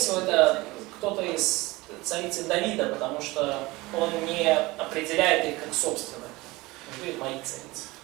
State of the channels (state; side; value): quieter; left; 21.4 dB